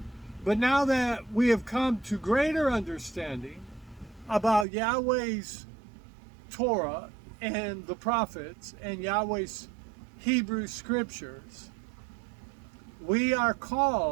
But now that we have come to greater understanding about Yahweh's Torah and the prophets and Yahweh's Hebrew scriptures, we are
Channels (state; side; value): drops out; left; at 4.7 s